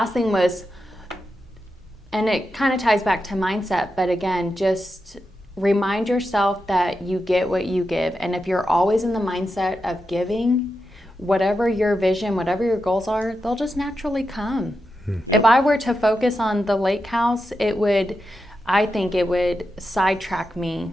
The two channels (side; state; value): both; normal; correlation 0.88